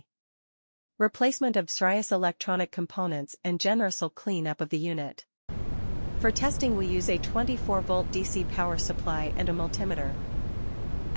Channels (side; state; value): both; inverted; correlation -1.00